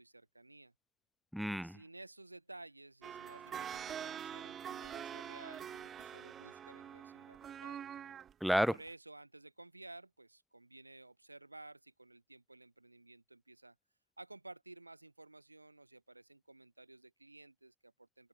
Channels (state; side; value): normal; both; correlation 0.83